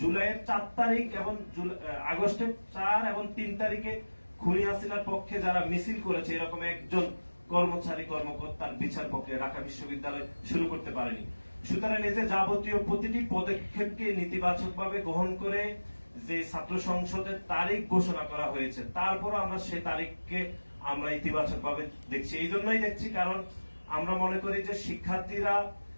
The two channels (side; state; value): both; inverted; correlation -1.00